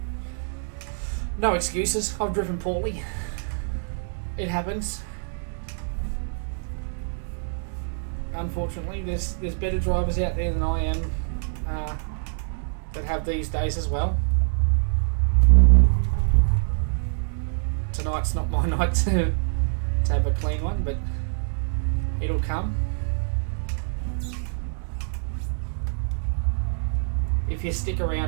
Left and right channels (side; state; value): left; silent; digital silence